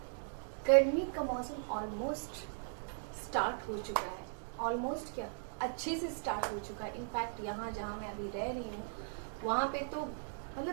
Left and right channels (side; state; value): left; silent; digital silence